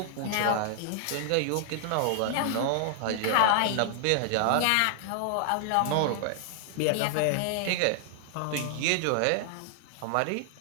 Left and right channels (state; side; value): different; both; correlation -0.01